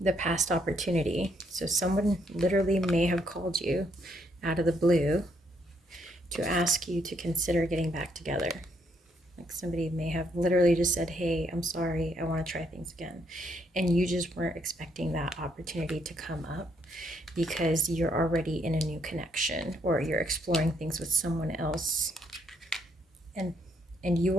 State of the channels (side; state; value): both; normal; correlation 0.72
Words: the past opportunity. So someone literally may have called you out of the blue to ask you to consider getting back together. Like somebody may have literally just said, hey, I'm sorry, I want to try things again. And you just weren't expecting that opportunity to come up because you're already in a new connection, or you're exploring things with someone else. And you